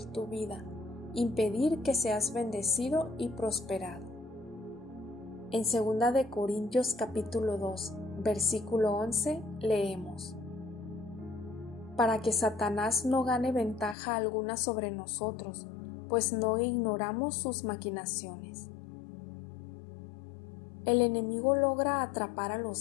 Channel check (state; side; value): drops out; right; at 14.0 s